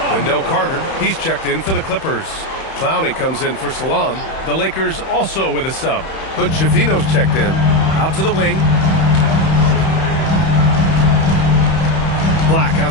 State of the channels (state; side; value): late; right; 31 ms